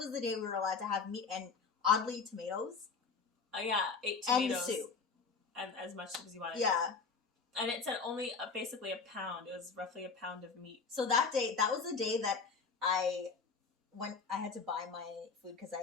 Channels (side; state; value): right; quieter; 5.0 dB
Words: the day we were allowed to have meat and oddly tomatoes. Oh yeah, 8 tomatoes. And soup. And as much soup as you wanted. Yeah. And it said only basically a pound. It was roughly a pound of meat. So that was the day that I had to buy my food because